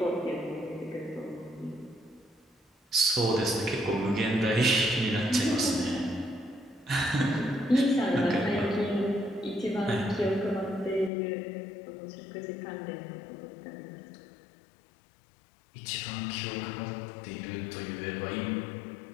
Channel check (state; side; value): drops out; right; at 11.1 s